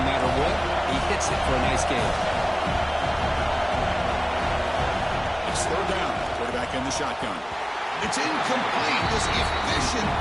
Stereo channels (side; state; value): both; identical; correlation 1.00